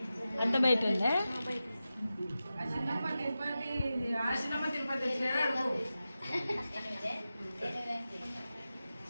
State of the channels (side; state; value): both; inverted; correlation -0.93